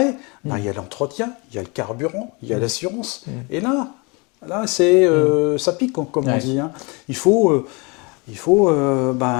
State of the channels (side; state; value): right; quieter; 29.1 dB